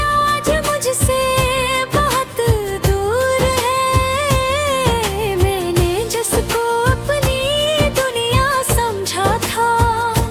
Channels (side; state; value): both; identical; correlation 1.00